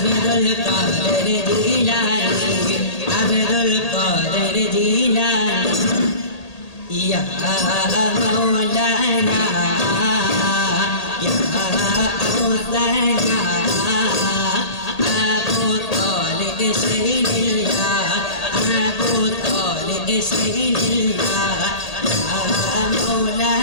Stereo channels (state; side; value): late; right; 1.8 ms